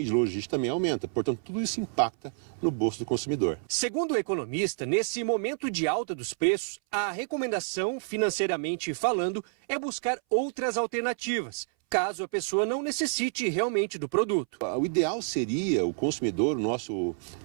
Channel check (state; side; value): silent; left; 59 dB below the other